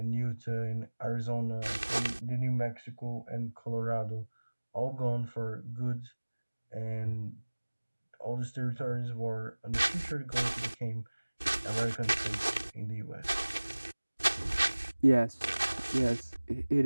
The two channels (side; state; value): both; inverted; correlation -1.00